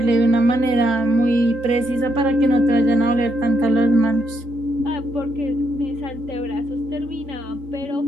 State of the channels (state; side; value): late; left; 3.8 ms